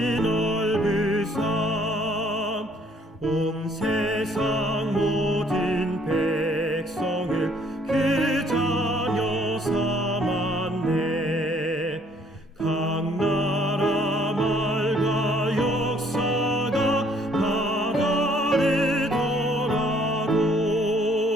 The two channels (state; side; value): normal; both; correlation 0.63